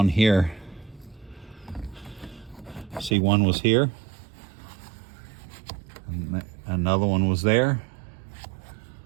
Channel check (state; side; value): drops out; left; at 3.2 s